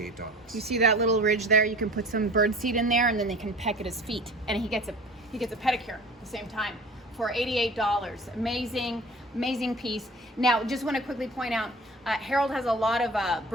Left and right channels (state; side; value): normal; both; correlation 0.42